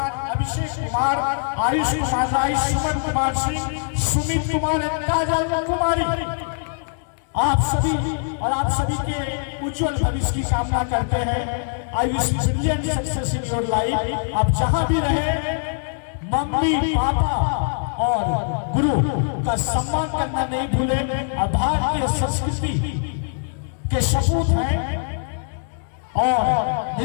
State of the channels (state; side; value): silent; right; digital silence